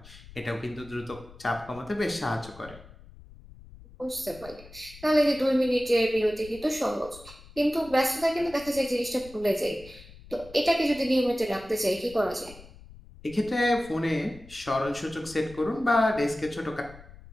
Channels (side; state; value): left; noise; rumble, 19 dB below the sound